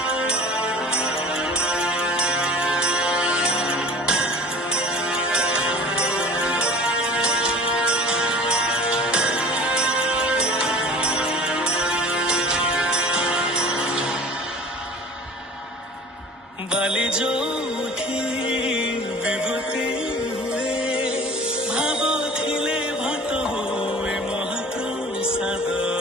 बाली जोठी विभूति हुए भाव थिले भात हुए महाप्रसाद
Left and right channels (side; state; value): both; normal; correlation 0.43